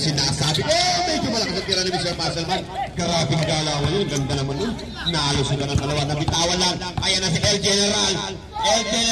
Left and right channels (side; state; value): both; identical; correlation 1.00